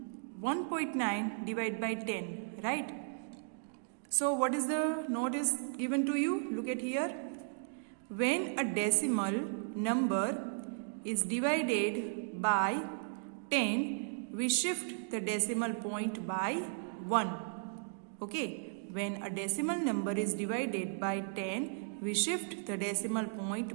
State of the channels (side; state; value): left; silent; digital silence